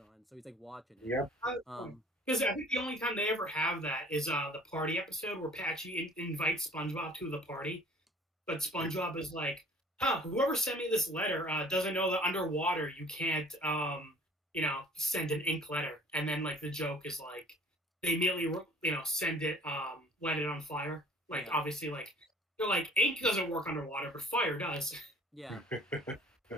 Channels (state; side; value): normal; both; correlation 0.50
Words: on. So he's like watching it. Yeah. Because I think the only time they ever have that is the party episode where Patchy invites SpongeBob to the party, but SpongeBob is like, "Huh, whoever sent me this letter doesn't know that underwater you can't, send an ink letter." And then like the joke is like they immediately send it, let it on fire. Like obviously like they're like ink doesn't work underwater, but fire does. Yeah.